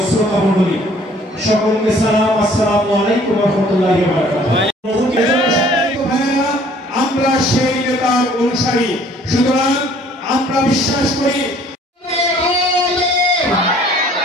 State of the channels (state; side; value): normal; both; correlation 0.56